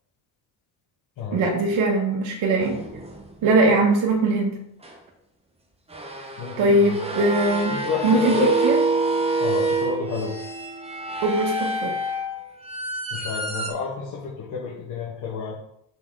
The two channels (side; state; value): both; normal; correlation 0.18